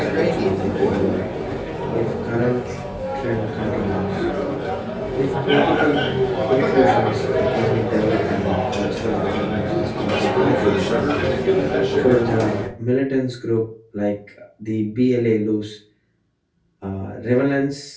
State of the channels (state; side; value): identical; both; correlation 1.00